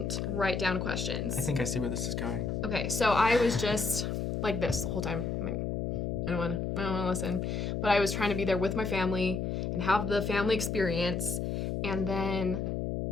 write down questions. I think I see where this is going. Okay, so I was just like this the whole time. I'm like, I don't want to listen. But I was trying to be there with my family and have the family experience. And then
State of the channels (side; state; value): left; noise; hum, 1 dB below the sound